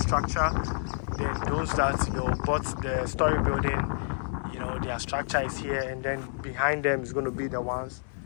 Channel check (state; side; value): silent; right; 59 dB below the other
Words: then those that bought the story building, their structure is here, and then behind them is going to be the ones